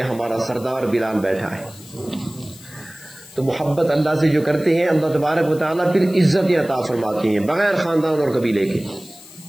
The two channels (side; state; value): left; noise; hiss, 20 dB below the sound